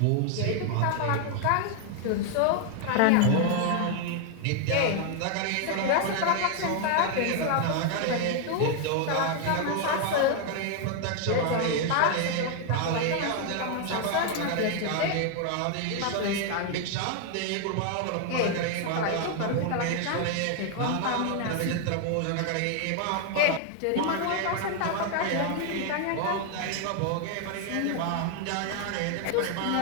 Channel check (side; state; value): both; different; correlation 0.00